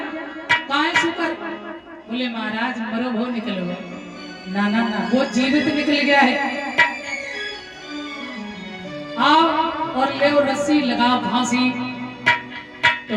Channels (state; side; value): identical; both; correlation 1.00